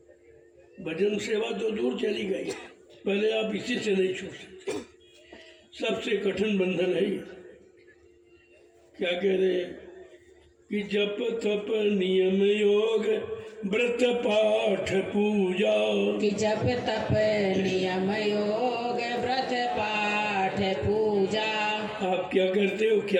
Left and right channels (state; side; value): identical; both; correlation 1.00